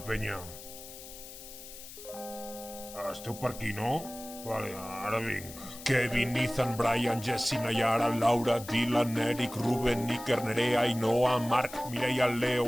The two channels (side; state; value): left; noise; hiss, 14 dB below the sound